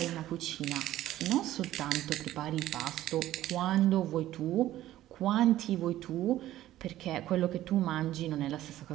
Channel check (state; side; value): quieter; left; 14.1 dB